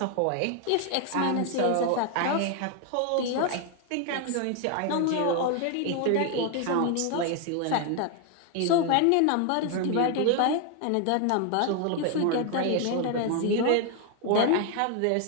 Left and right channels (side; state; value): both; different; correlation 0.00